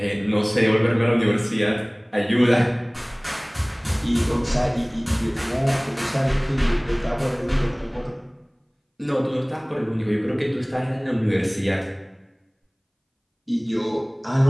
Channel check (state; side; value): identical; both; correlation 1.00